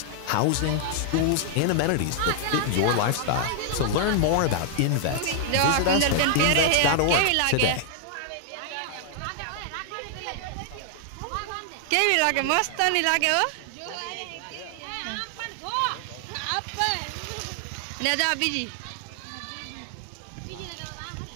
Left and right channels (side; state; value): both; different; correlation 0.00